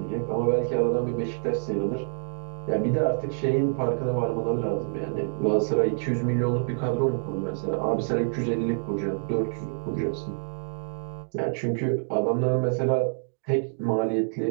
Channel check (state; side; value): silent; left; digital silence